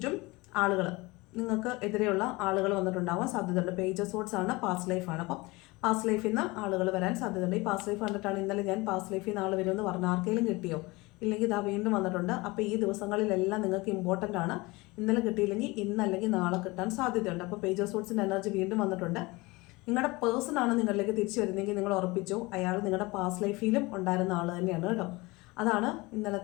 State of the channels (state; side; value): quieter; right; 23.2 dB